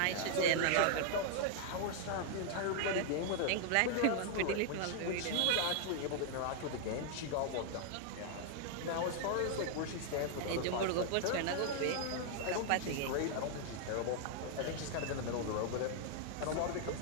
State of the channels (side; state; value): both; different; correlation 0.00